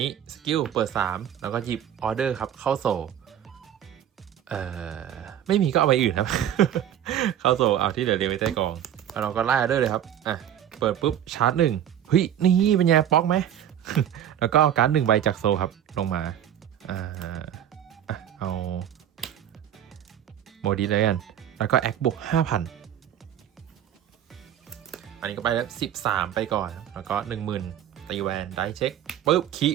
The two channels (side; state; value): left; quieter; 10.4 dB